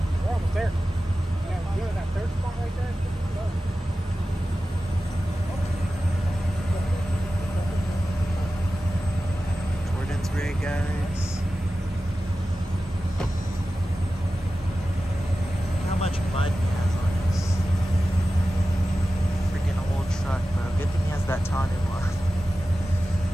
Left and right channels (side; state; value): both; normal; correlation 0.94